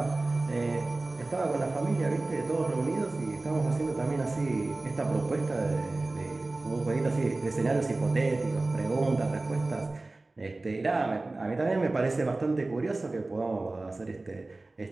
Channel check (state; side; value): quieter; left; 3.1 dB